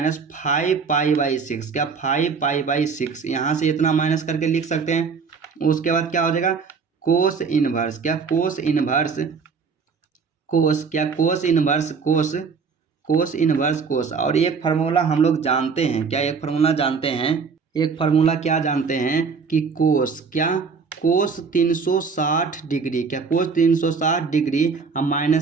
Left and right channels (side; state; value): left; quieter; 5.4 dB